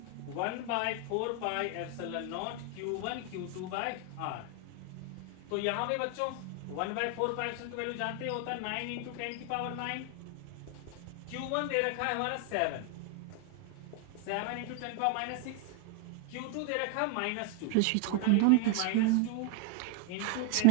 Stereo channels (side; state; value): both; different; correlation 0.00